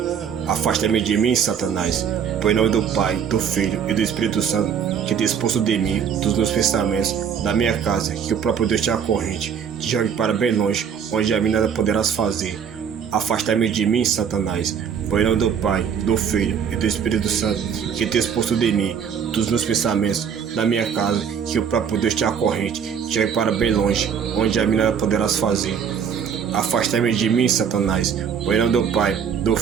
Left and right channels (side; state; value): left; quieter; 7.5 dB